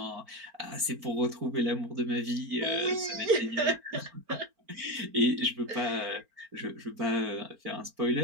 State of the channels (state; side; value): late; left; 4.4 ms